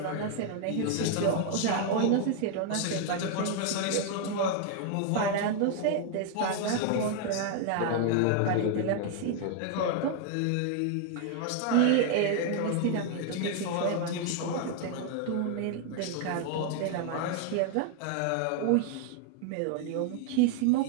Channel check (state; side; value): different; both; correlation 0.00